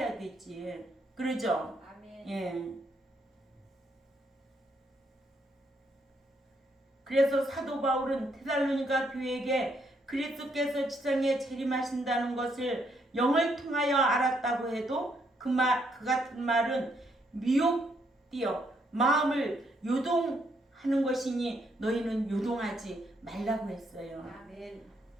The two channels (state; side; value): normal; both; correlation 0.74